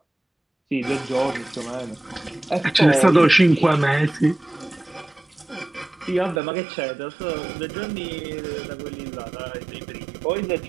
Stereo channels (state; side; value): drops out; left; at 6.4 s